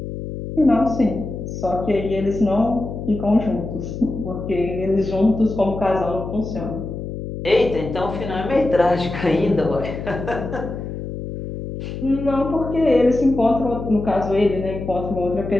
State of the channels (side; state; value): left; noise; hum, 7 dB below the sound